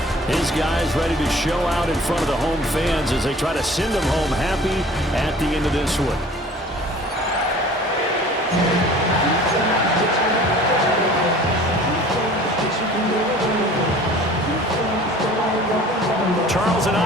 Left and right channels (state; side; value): normal; both; correlation 0.47